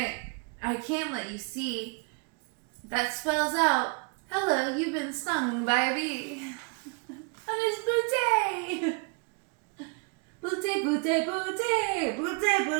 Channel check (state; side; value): quieter; left; 35.2 dB